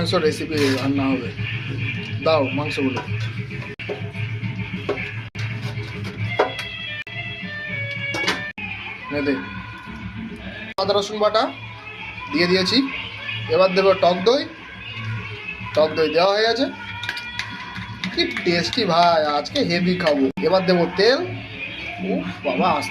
রেসিপি রান্না হবে। দাও মাংসগুলো। দে আদা রসুন বাটা দিয়ে দিয়েছি। এবার দেবো টক দই। টক দই দেওয়া হয়ে গেছে। কি টেস্টি ভাই, আজকে হেভি খাবো। এবার দেবো তেল। উফ বাবা,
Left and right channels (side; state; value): both; identical; correlation 1.00